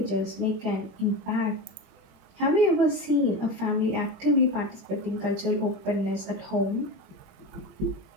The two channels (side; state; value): left; late; 21 ms